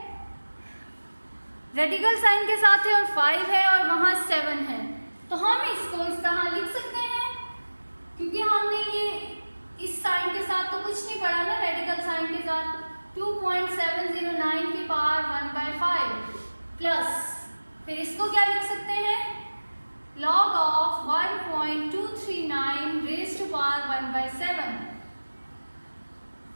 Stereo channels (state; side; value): inverted; both; correlation -1.00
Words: रेडिकल साइन के साथ है और 5 है और वहां 7 है, तो हम इसको इस तरह लिख सकते हैं क्योंकि हमने ये इस साइन के साथ तो कुछ नहीं पढ़ा ना. रेडिकल साइन के साथ 2.709 की पावर 1/5 प्लस फिर इसको क्या लिख सकते हैं? log of 1.239 raised to power 1/7.